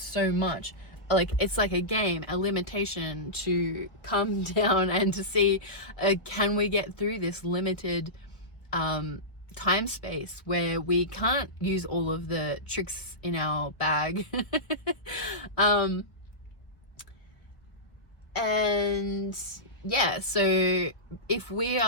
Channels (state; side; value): late; right; 1.3 ms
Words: much. Like it's like a game, a limitation to come down and to see, can we get through this limited time space where we can't use all of the tricks in our bag. And yeah, so if we